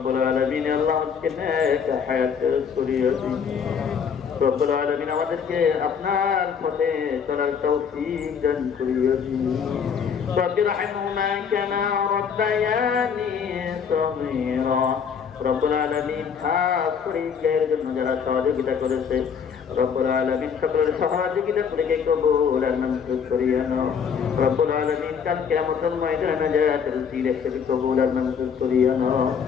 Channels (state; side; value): quieter; right; 6.9 dB